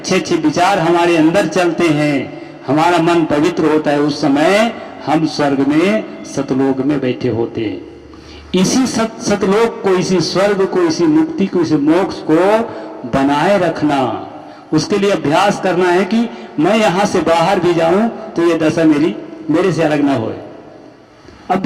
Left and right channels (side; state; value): both; identical; correlation 1.00